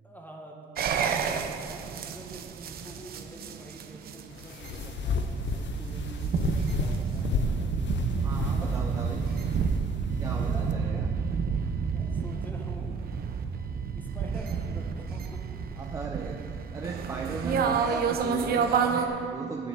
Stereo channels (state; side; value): quieter; left; 4.0 dB